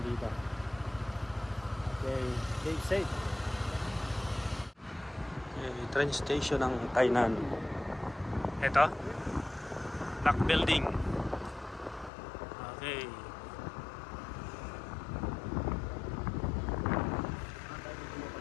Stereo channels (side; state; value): right; drops out; at 12.1 s